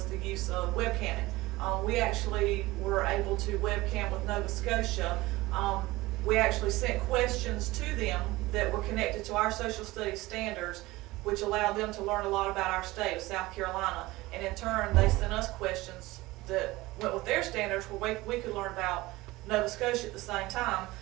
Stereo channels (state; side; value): quieter; left; 19.7 dB